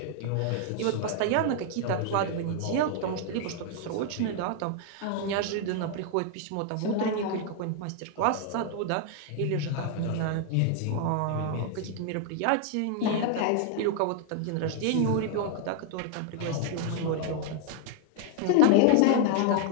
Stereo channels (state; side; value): different; both; correlation 0.00